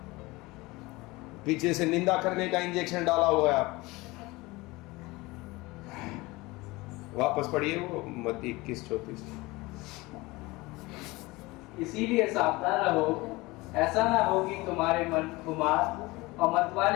पीछे से निंदा करने का इंजेक्शन डाला हुआ है आपको। वापस पढ़िए वो मत्ती 21:34। इसीलिए सावधान रहो, ऐसा ना हो कि तुम्हारे मन खुमार और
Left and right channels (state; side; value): quieter; right; 21.9 dB